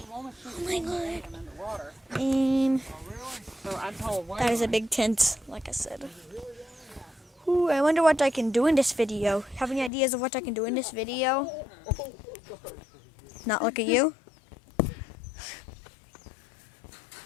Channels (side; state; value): right; drops out; at 9.9 s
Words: Oh my god. And that is a big tent, like I said. Ooh, I wonder what I can do in this video. Have any ideas of what I can do in this video? Not look at you?